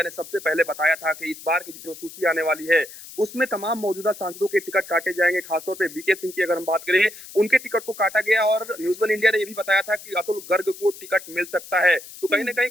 ने सबसे पहले बताया था कि इस बार की जो सूची आने वाली है, उसमें तमाम मौजूदा सांसदों के टिकट काटे जाएंगे। खासतौर पे बीके सिंह की अगर हम बात करें, उनके टिकट को काटा गया और न्यूज़ वन इंडिया ने ये भी बताया था कि अतुल गर्ग को टिकट मिल सकता है। तो कहीं न हम्म। कहीं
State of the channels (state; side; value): noise; left; hiss, 16 dB below the sound